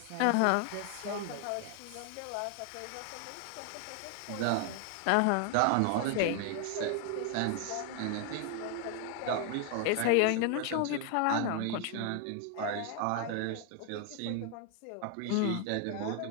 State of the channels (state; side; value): different; both; correlation 0.00